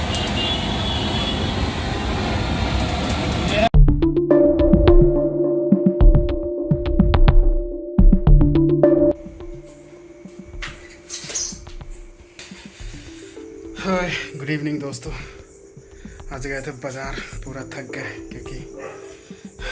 हाय, गुड इवनिंग दोस्तों। आज गए थे बाज़ार, पूरा थक गए क्योंकि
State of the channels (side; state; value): both; identical; correlation 1.00